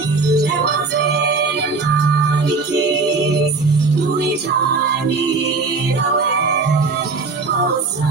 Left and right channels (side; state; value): left; quieter; 4.1 dB